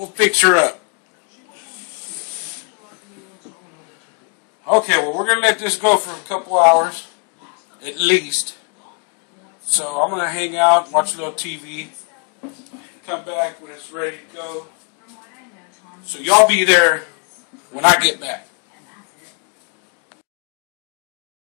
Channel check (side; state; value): right; quieter; 38.6 dB